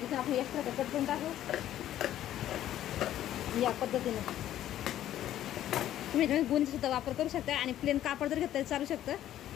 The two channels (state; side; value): quieter; right; 12.3 dB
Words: आपण एक्स्ट्रा कट करून टाकू या पद्धतीने। तुम्ही गुंज सुद्धा वापर करू शकता आणि प्लेन कापड जर घेतलं तरी चालू शकतं।